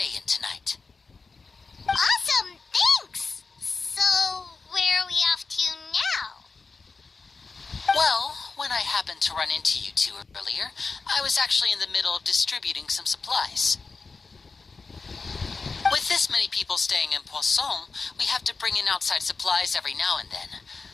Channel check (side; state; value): right; quieter; 4.4 dB